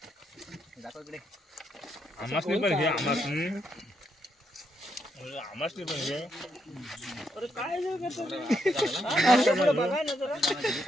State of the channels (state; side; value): normal; both; correlation 0.78